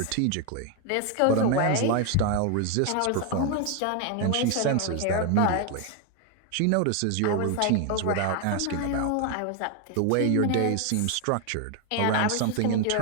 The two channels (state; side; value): different; both; correlation 0.01